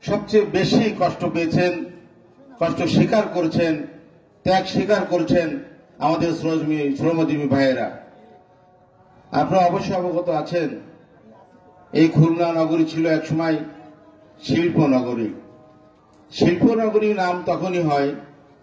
সবচেয়ে বেশি কষ্ট পেয়েছেন, কষ্ট স্বীকার করেছেন, ত্যাগ স্বীকার করেছেন আমাদের শ্রমজীবী ভাইয়েরা। আপনারা অবশ্যই অবগত আছেন, এই খুলনা নগরী ছিল একসময় শিল্প নগরী। শিল্প নগরী নাম তখনই হয়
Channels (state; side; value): identical; both; correlation 1.00